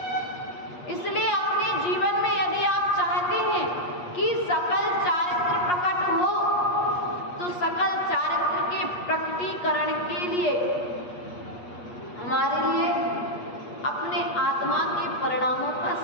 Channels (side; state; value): right; late; 8.4 ms